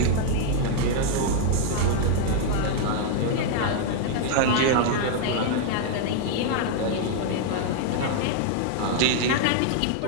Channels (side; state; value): both; different; correlation 0.00